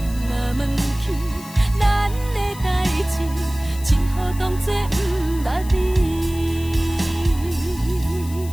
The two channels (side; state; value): left; noise; hiss, 17 dB below the sound